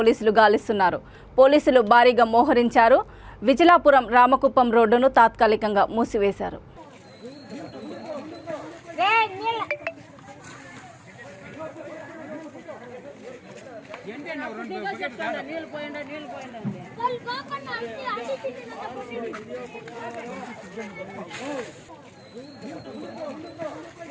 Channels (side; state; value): both; identical; correlation 1.00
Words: గాలిస్తున్నారు. పోలీసులు భారీగా మోహరించారు. విజలాపురం రామకుప్పం రోడ్డును తాత్కాలికంగా మూసివేశారు.